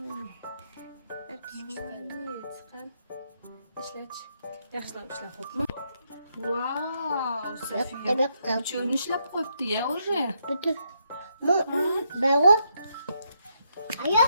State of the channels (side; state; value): both; inverted; correlation -0.77